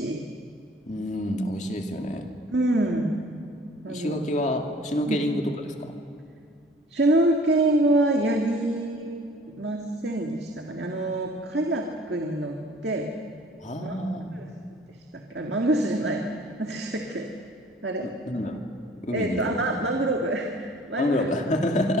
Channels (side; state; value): both; normal; correlation 0.51